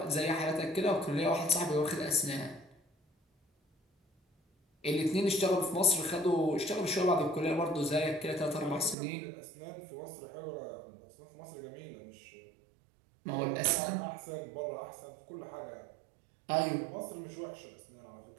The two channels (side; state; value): left; drops out; at 9.0 s